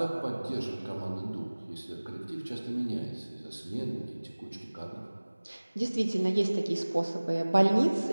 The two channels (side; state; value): both; inverted; correlation -1.00